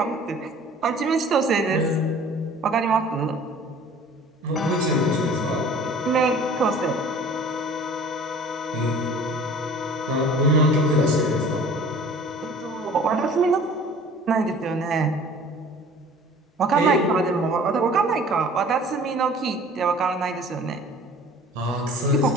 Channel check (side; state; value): both; normal; correlation 0.47